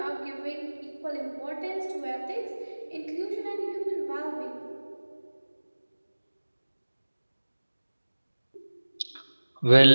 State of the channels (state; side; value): inverted; both; correlation -1.00